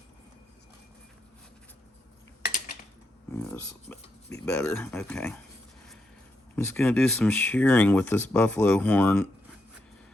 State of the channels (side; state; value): both; normal; correlation 0.82